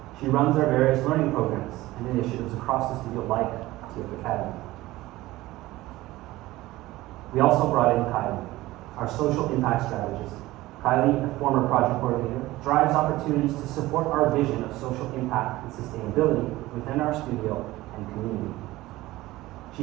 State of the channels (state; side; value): quieter; left; 17.9 dB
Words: She runs our various learning programs and initiatives across the studio like TF Academy. We also brought in Kylie, our social impact strategist. Kylie, a former project coordinator, drives opportunities to support our vision of social impact and sustainability within our studio and community.